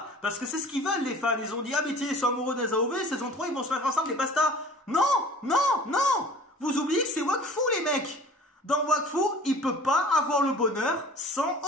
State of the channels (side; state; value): both; normal; correlation 0.46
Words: Parce que c'est ce qu'ils veulent les fans. Ils ont dit, ah mais tiens, ils sont amoureux des AOV, saison 3, ils vont se mettre ensemble et basta. Non, non, non. Vous oubliez que c'est Wakfu les mecs. Dans Wakfu, il peut pas avoir le bonheur sans